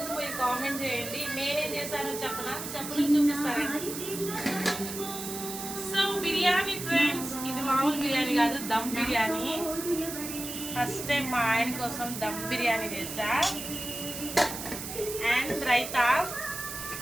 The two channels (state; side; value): noise; right; hiss, 7 dB below the sound